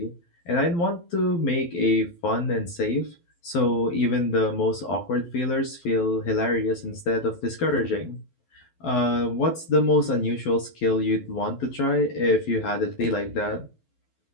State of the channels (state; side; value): late; right; 12 ms